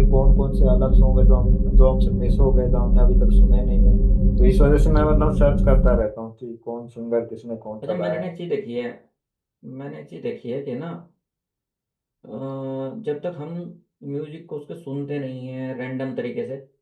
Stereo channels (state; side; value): identical; both; correlation 1.00